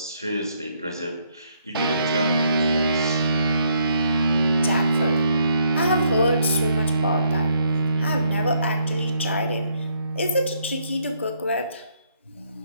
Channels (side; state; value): both; inverted; correlation -0.71